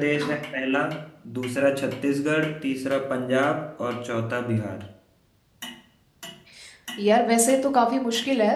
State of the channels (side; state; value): both; identical; correlation 1.00